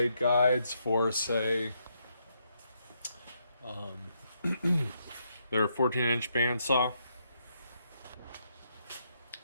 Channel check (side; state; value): both; inverted; correlation -0.77